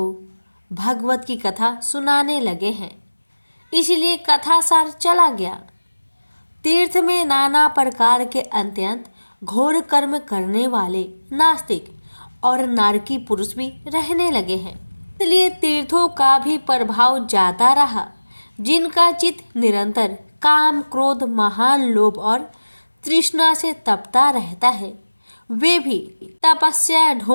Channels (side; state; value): both; inverted; correlation -1.00